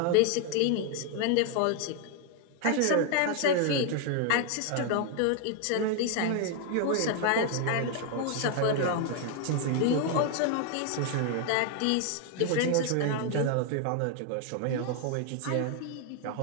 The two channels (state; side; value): different; both; correlation 0.00